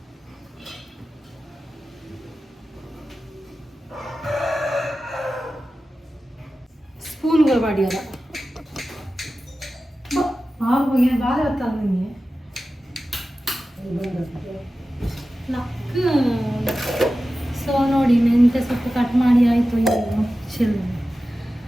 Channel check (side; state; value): both; normal; correlation 0.94